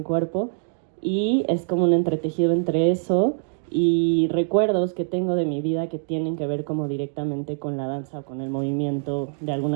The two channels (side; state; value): left; silent; digital silence